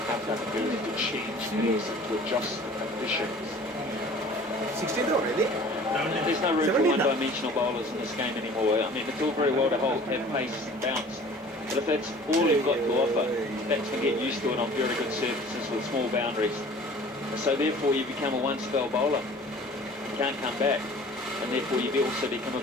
have that ability to change pace and to adjust the conditions. 16th already? There's no room for one-dimensional bowlers in this game anymore. I mean, it's all very well to have pace and bounce, but if that's all you've got to offer, batsmen get used to it on very good surfaces with small boundaries. So therefore, you become a one-spell bowler. You can't come back. and therefore you also become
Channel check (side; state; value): both; normal; correlation 0.47